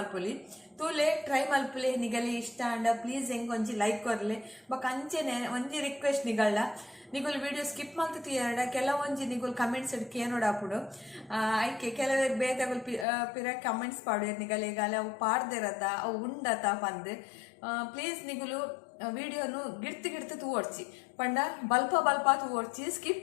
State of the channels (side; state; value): right; drops out; at 13.1 s